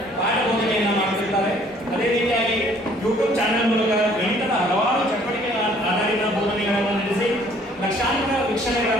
ಪಾಠ ಬೋಧನೆಯನ್ನು ಮಾಡುತ್ತಿದ್ದಾರೆ. ಅದೇ ರೀತಿಯಾಗಿ ಯೂಟ್ಯೂಬ್ ಚಾನೆಲ್ ಮೂಲಕ ಗಣಿತದ ಹಲವಾರು ಚಟುವಟಿಕೆಗಳ ಆಧಾರಿತ ಬೋಧನೆಗಳನ್ನು ನಡೆಸಿ ಲಕ್ಷಾಂತರ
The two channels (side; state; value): both; normal; correlation 0.59